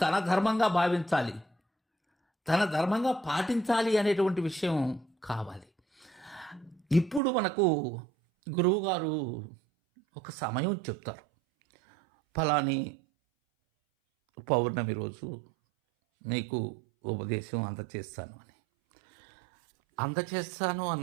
తన ధర్మంగా భావించాలి, తన ధర్మంగా పాటించాలి అనేటువంటి విషయం కావాలి. ఇప్పుడు మనకు గురువుగారు ఒక సమయం చెప్తారు, ఫలాని పౌర్ణమి రోజు నీకు ఉపదేశం అందచేస్తాను అని. అందచేస్తాను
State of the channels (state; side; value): drops out; left; at 7.2 s